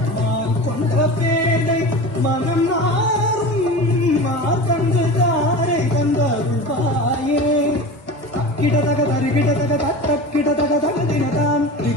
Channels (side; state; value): right; late; 1.1 ms